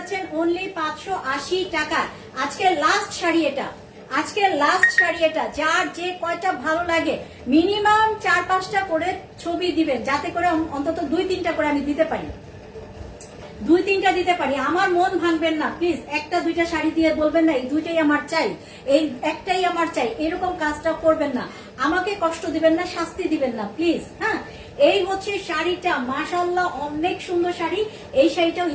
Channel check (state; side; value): identical; both; correlation 1.00